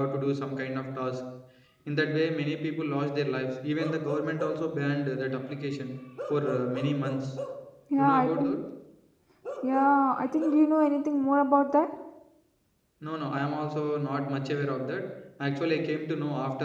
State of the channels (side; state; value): both; identical; correlation 1.00